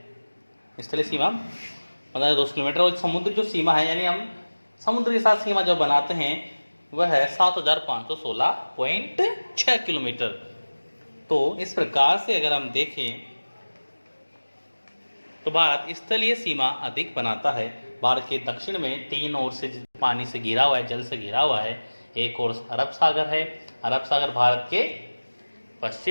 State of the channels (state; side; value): inverted; both; correlation -1.00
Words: स्थलीय सीमा 15,200 किलोमीटर, और समुद्र जो सीमा है, यानी हम समुद्र के साथ सीमा जो बनाते हैं वह है 7,516.6 किलोमीटर। तो इस प्रकार से अगर हम देखें तो भारत स्थलीय सीमा अधिक बनाता है। भारत के दक्षिण में 3 ओर से पानी से घिरा हुआ है, जल से घिरा हुआ है। एक ओर अरब सागर है, अरब सागर भारत के